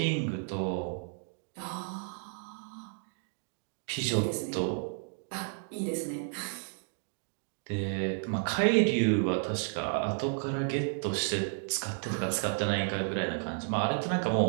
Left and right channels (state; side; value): silent; left; 56 dB below the other